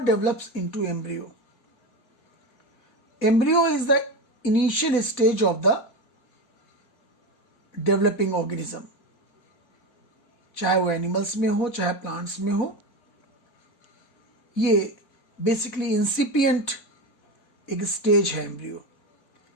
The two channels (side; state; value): right; late; 4.1 ms